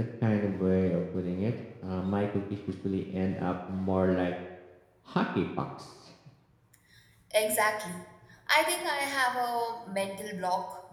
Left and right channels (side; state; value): both; identical; correlation 1.00